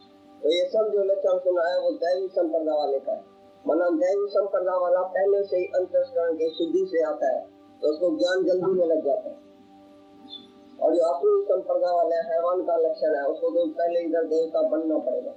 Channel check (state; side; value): identical; both; correlation 1.00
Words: तो ये सब जो लक्षण सुना है वो दैवी संपदा वाले का है। माना दैवी संपदा वाला पहले से ही अंतःकरण की शुद्धि से आता है तो उसको ज्ञान जल्दी में लग जाता है। और जो आसुरी संपदा वाला हैवान का लक्षण है उसको तो पहले इधर देवता बनना पड़ेगा,